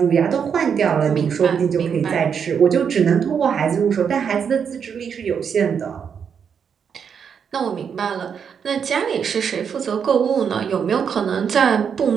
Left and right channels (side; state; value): left; quieter; 7.1 dB